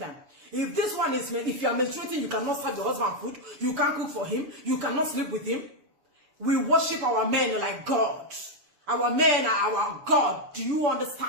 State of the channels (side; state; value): left; late; 6.9 ms